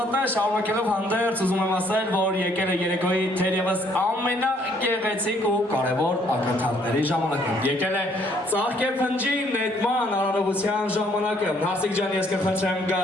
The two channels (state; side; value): normal; both; correlation 0.65